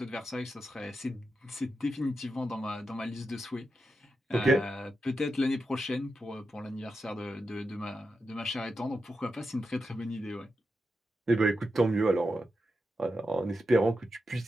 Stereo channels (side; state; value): both; normal; correlation 0.88